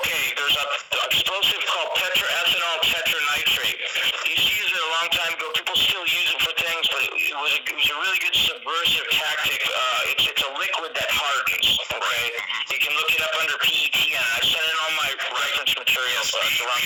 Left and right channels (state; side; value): identical; both; correlation 1.00